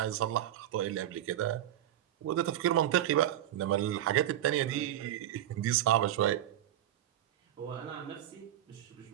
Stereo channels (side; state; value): left; quieter; 12.2 dB